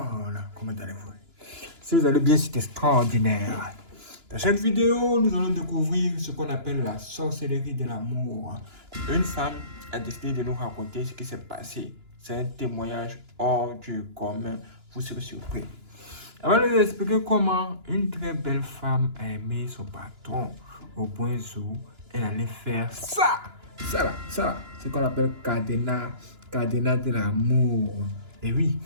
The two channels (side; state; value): left; late; 2.9 ms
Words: comment allez-vous? Si vous allez bien, c'est extraordinaire. Dans cette vidéo, nous allons découvrir ce qu'on appelle la sorcellerie de l'amour. Une femme a décidé de nous raconter ce qui s'est passé. C'est un témoignage hors du commun. Vous serez surpris. Avant de vous expliquer comment une très belle femme a aimé son patron au point où elle allait faire ça. Ça, c'est ce qu'on appelle cadenas de l'amour. Et oui,